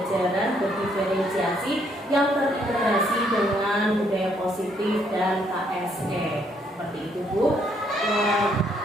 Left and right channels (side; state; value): both; normal; correlation 0.70